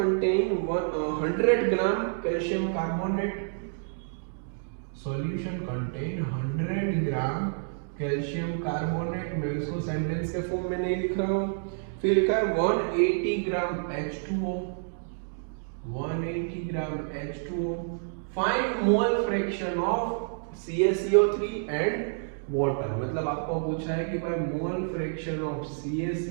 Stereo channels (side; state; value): left; silent; digital silence